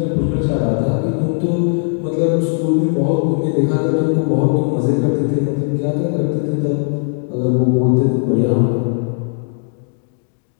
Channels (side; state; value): right; silent; 61 dB below the other